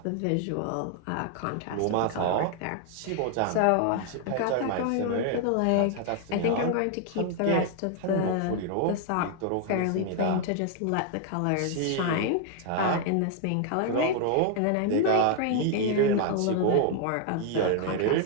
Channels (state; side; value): different; both; correlation 0.00